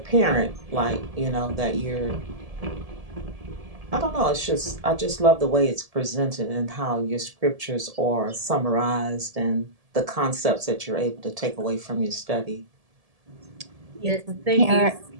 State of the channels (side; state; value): left; late; 1.7 ms